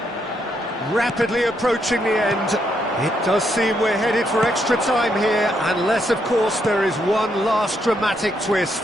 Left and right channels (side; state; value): both; normal; correlation 0.77